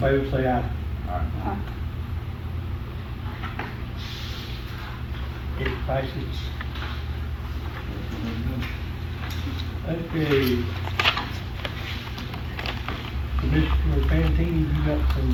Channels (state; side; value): identical; both; correlation 1.00